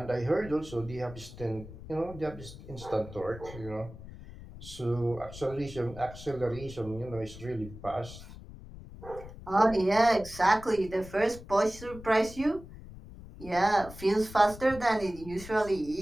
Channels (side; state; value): left; noise; rumble, 15 dB below the sound